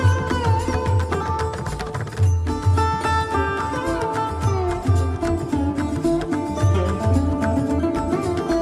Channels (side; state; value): both; identical; correlation 1.00